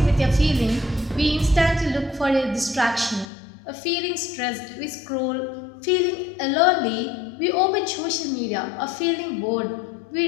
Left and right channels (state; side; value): drops out; right; at 3.2 s